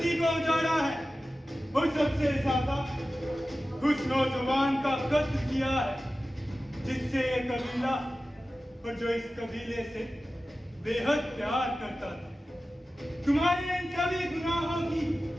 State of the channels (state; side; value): normal; both; correlation 0.95